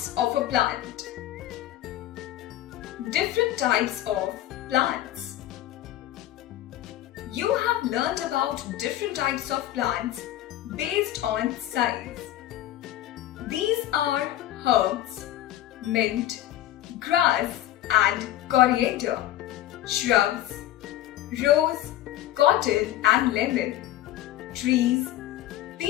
of a plant. Different types of plants. You have learned about different types of plants based on size. These are herbs, mint, grass and coriander, shrubs, rose, cotton and lemon, trees,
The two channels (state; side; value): quieter; right; 13.6 dB